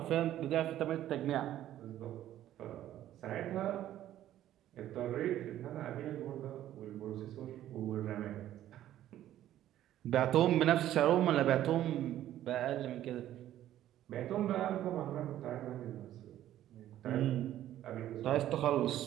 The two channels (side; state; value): left; quieter; 12.6 dB